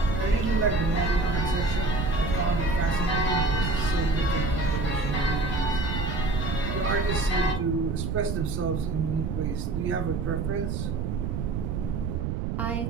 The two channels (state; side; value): noise; right; rumble, 1 dB below the sound